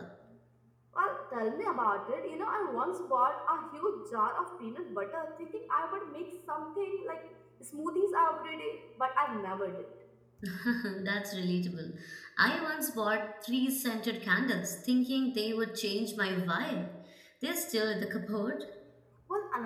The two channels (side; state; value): both; identical; correlation 1.00